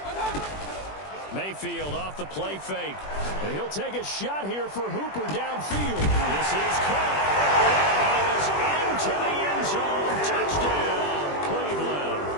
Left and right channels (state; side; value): late; right; 21 ms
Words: Mayfield off the play fake. And he'll take a shot here for Hooper downfield. This is caught. He is into the end zone. Touchdown, Cleveland.